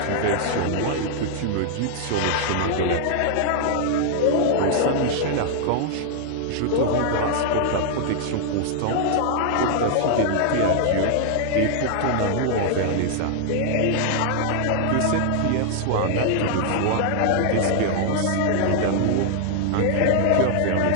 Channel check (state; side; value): different; both; correlation 0.00